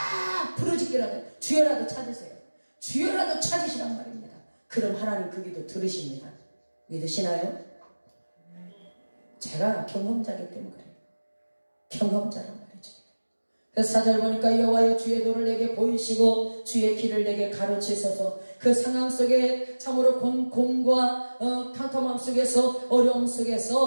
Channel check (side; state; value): both; inverted; correlation -1.00